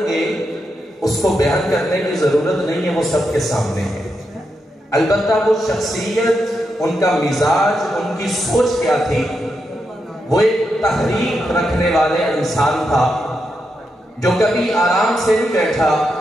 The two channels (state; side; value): normal; both; correlation 0.84